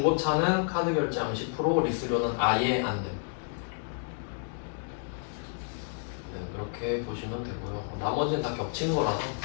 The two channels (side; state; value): right; silent; digital silence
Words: 카드 결제하면 10%, 리스료는 아예 안 됨. 네, 그렇게 보시면 되고요. 나머지는 다 겹친 거라서.